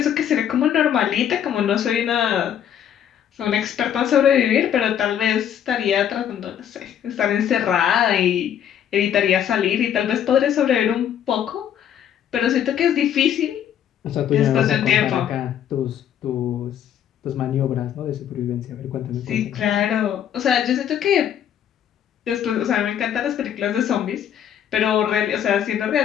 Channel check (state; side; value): quieter; right; 9.6 dB